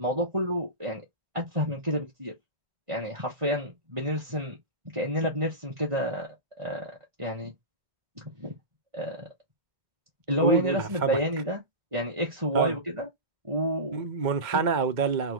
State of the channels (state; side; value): late; left; 2.1 ms